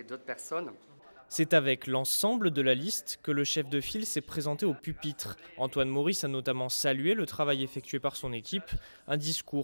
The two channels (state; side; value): inverted; both; correlation -1.00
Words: d'autres personnes. C'est avec l'ensemble de la liste que le chef de file s'est présenté au pupitre. Antoine Maurice a notamment salué le travail effectué par son équipe, un